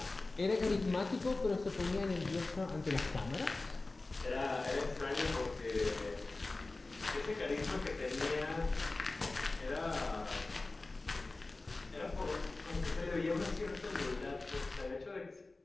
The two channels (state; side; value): quieter; right; 3.3 dB